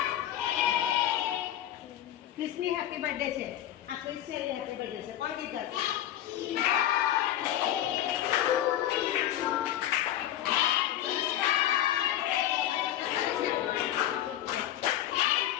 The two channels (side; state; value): right; quieter; 12.3 dB